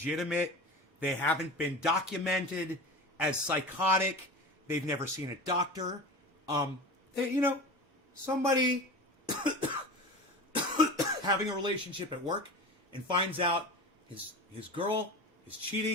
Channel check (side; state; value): both; normal; correlation 0.31